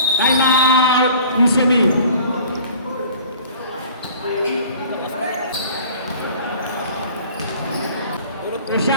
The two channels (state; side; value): inverted; both; correlation -0.48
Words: Time out. UCME.